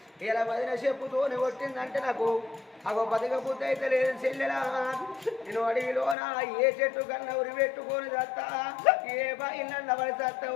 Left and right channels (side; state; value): right; drops out; at 6.2 s